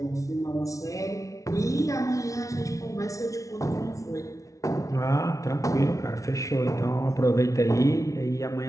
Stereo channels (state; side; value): late; right; 0.16 ms